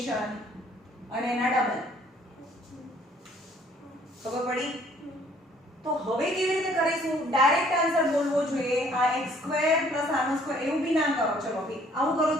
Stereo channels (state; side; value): normal; both; correlation 0.60